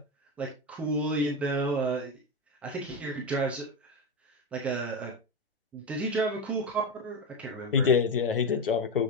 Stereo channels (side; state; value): both; normal; correlation 0.14